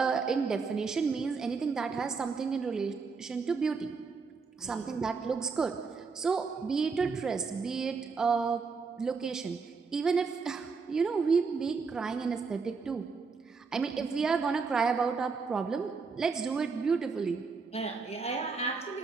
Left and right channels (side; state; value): left; quieter; 4.9 dB